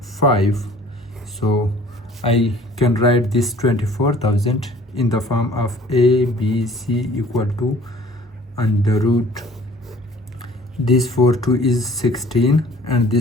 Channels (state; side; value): normal; both; correlation 0.52